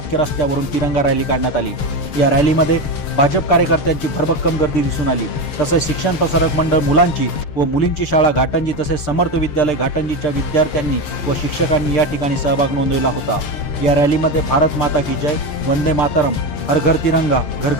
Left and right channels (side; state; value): right; late; 6.7 ms